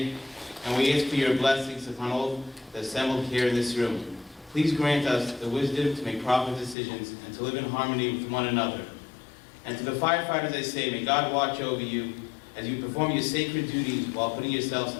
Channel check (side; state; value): right; drops out; at 6.8 s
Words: and we ask for your blessings upon all the assembled here in this room. Please grant us the wisdom to make proper decisions and to live in harmony with one another. And to the firefighters I say, may God watch over you as you perform your sacred duties while putting yourselves